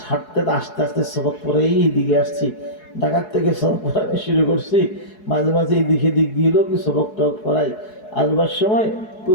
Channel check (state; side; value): late; right; 4.7 ms